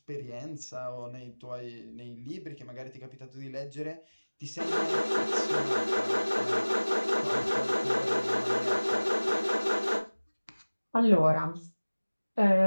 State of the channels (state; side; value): inverted; both; correlation -1.00